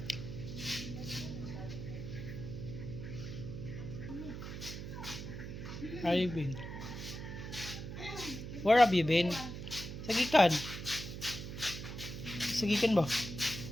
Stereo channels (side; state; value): right; noise; hum, 8 dB below the sound